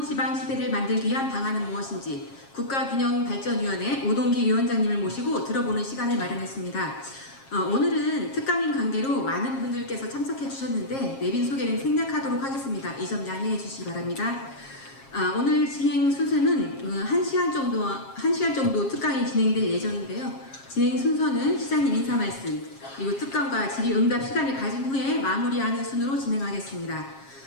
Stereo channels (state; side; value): late; right; 7.4 ms